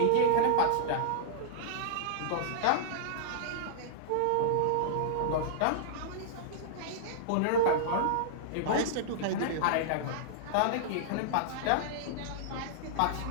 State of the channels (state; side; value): different; both; correlation -0.02